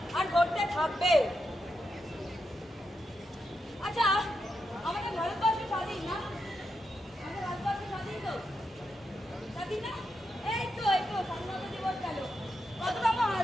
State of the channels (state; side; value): normal; both; correlation 0.85